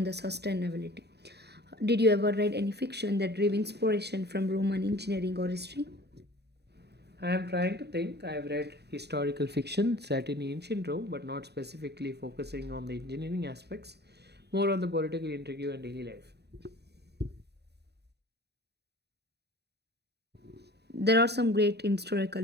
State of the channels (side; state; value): left; late; 0.48 ms